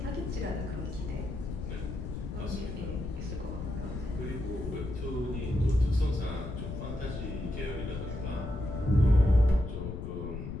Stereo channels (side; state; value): left; noise; rumble, 6 dB below the sound